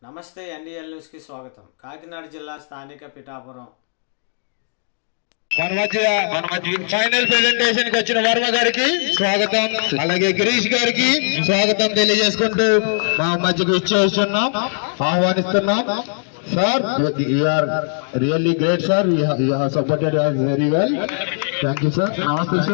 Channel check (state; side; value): silent; right; digital silence